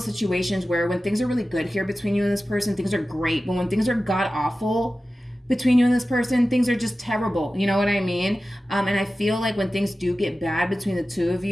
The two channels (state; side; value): normal; both; correlation 0.95